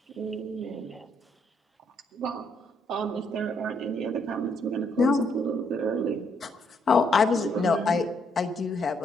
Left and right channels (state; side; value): normal; both; correlation 0.73